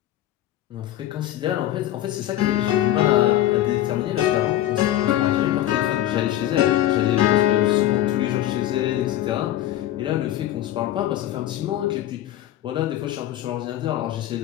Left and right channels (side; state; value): right; quieter; 13.4 dB